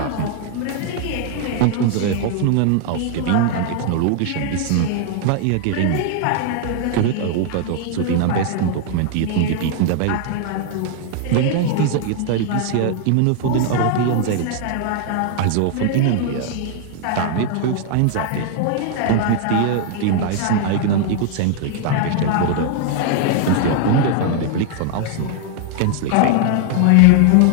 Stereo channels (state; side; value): different; both; correlation 0.00